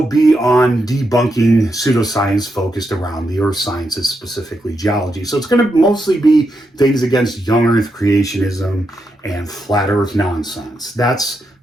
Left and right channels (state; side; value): normal; both; correlation 0.83